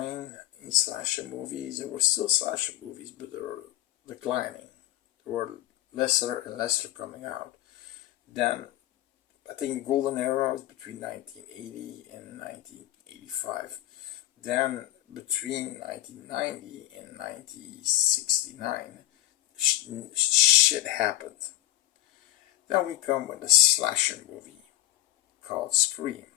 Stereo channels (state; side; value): quieter; right; 14.8 dB